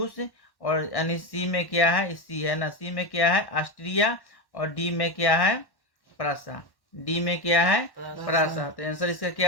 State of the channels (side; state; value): right; late; 1.1 ms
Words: और यानी सी में क्या है? सी है ना। सी में क्या है? ऑस्ट्रिया। और डी में क्या है? प्रासा। डी में क्या है? प्रासा। तो आंसर इसका